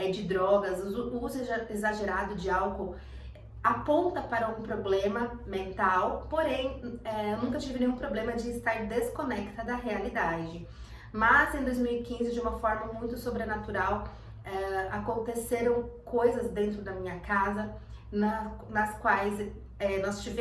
de drogas, o uso exagerado de álcool aponta para um problema mental. Porém, eu nunca tive nenhum problema de estar desconecta da realidade. Mas em 2015, de uma forma muito sobrenatural, aconteceram coisas dentro da minha casa, nas quais nós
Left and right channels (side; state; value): both; identical; correlation 1.00